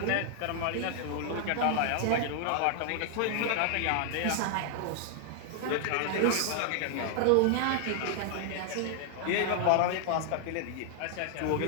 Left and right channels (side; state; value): both; different; correlation 0.00